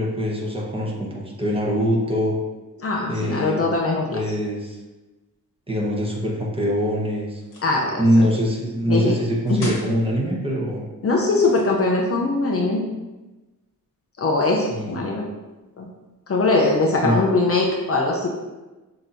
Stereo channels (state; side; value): normal; both; correlation 0.39